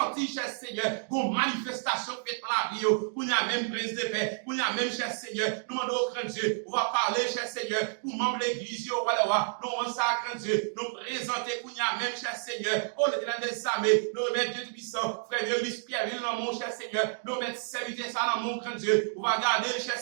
cher Seigneur, une manifestation faite dans la vie, pour y a même prise de paix, pour y a même, cher Seigneur, nous demandons au grand Dieu, on va parler, cher Seigneur, pour membres de l'église, nous demandons ça, grand Dieu, nous présenter, pour y a même, cher Seigneur, oh, l'éternel des armées, nous remettre Dieu puissant, frère Vieux Pierre, dans mon cher Seigneur, nous remettre serviteur ça dans mon grand Dieu, on va garder, cher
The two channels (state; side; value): silent; left; digital silence